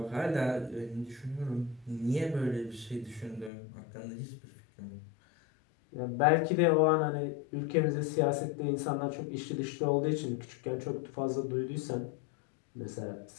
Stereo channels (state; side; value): drops out; right; at 3.5 s